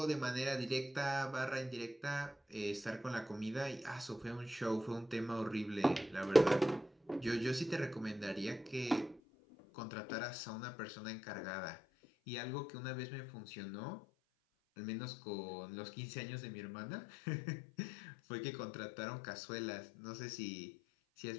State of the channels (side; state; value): right; drops out; at 9.2 s